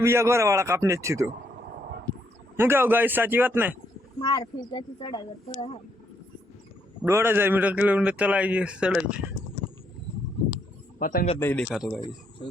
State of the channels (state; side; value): normal; both; correlation 0.73